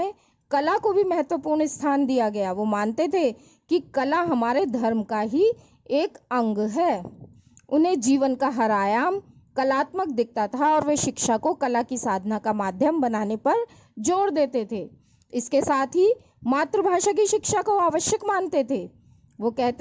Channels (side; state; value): both; identical; correlation 1.00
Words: कला को भी महत्वपूर्ण स्थान दिया गया। वो मानते थे कि कला हमारे धर्म का ही एक अंग है। उन्हें जीवन का हर आयाम कलात्मक दिखता था और वे शिक्षा को कला की साधना का माध्यम बनाने पर जोर देते थे। इसके साथ ही मातृभाषा की शिक्षा को आवश्यक मानते थे। वो